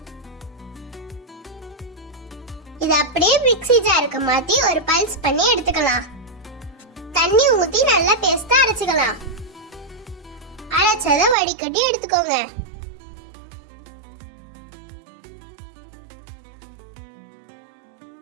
இது அப்படியே மிக்ஸி ஜாருக்கு மாத்தி ஒரு பல்ஸ் பண்ணி எடுத்துக்கலாம். தண்ணி ஊத்தி நல்லா பேஸ்டா அரைச்சுக்கலாம். அரைச்சதை வடிகட்டி எடுத்துக்கோங்க.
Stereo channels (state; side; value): drops out; left; at 11.4 s